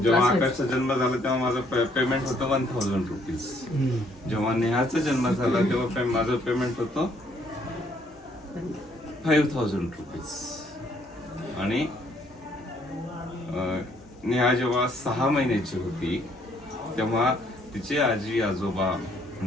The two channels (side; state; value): both; normal; correlation 0.66